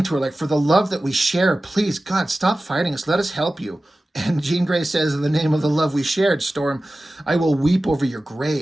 to her, like, "For the love that we share, please, God, stop fighting us. Let us help you." And Jean Grey says, "In the name of the love we shared, Storm, I will weep over your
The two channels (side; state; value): both; normal; correlation 0.96